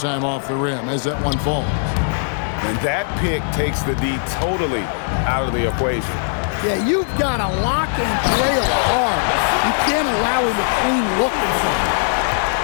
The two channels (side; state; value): right; silent; digital silence